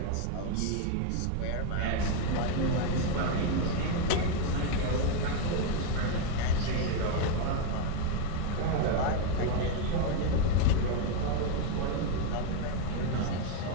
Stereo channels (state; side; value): different; both; correlation 0.01